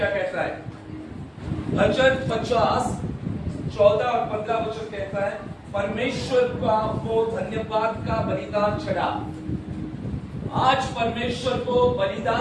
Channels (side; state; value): both; identical; correlation 1.00